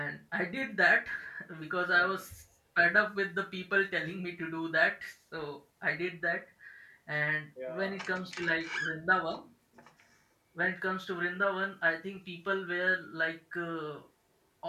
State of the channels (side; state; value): both; identical; correlation 1.00